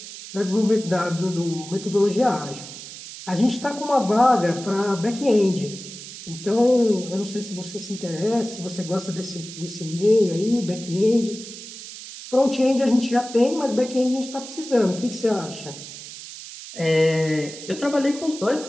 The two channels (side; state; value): right; noise; hiss, 13 dB below the sound